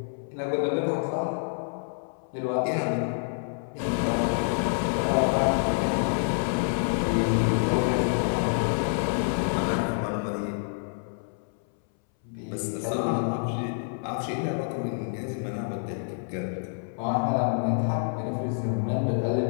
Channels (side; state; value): right; silent; 60 dB below the other